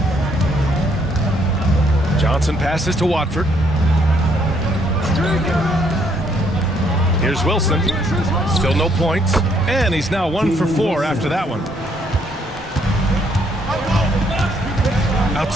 Johnson passes to Watford. Here's Wilson. Still no points. And he's now 1 for 4 after that one.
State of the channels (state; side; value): normal; both; correlation 0.69